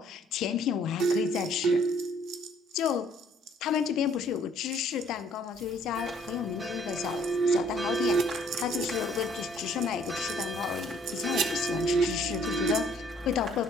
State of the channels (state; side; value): normal; both; correlation 0.61